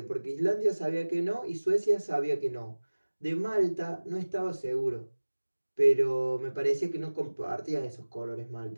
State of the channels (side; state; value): both; inverted; correlation -1.00